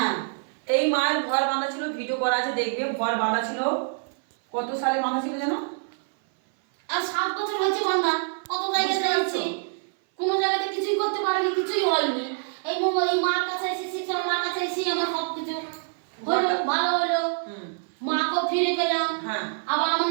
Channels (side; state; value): left; silent; 58 dB below the other